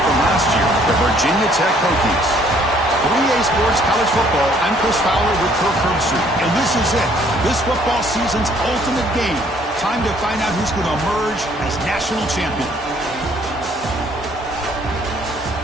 last year, the Virginia Tech Hokies. 3A Sports College Football, I'm Chris Fowler with Kirk Herbstreit, and this is it. This football season's ultimate game. Time to find out who's going to emerge as national champion.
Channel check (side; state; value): both; normal; correlation 0.62